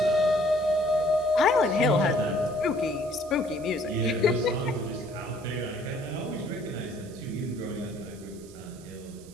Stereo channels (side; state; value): right; noise; hiss, 22 dB below the sound